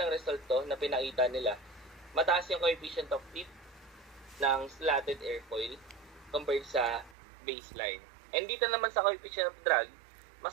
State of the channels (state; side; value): drops out; left; at 7.2 s